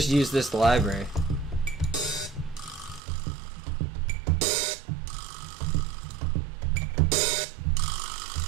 use this library.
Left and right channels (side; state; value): left; drops out; at 3.0 s